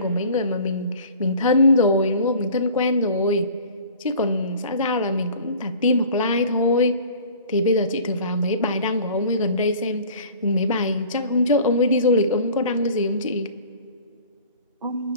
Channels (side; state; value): both; inverted; correlation -0.46